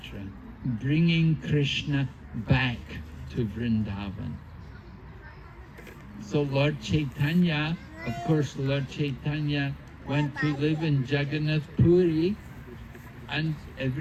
bringing Krishna back to Vrindavan. So Lord Chaitanya Of course, Lord Chaitanya went to live in Jagannath Puri, and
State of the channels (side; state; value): both; identical; correlation 1.00